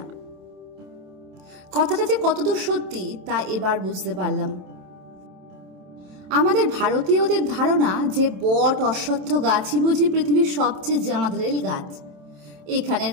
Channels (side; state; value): left; late; 27 ms